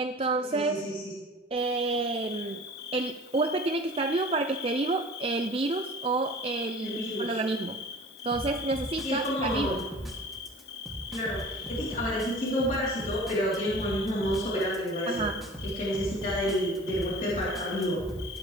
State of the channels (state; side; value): normal; both; correlation 0.43